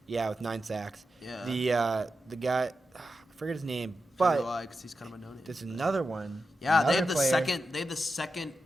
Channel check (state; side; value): normal; both; correlation 0.90